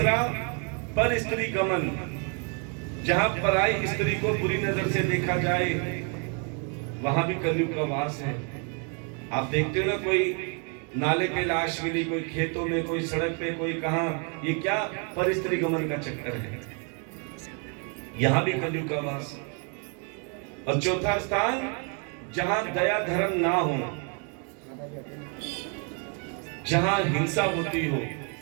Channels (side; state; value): left; quieter; 38.8 dB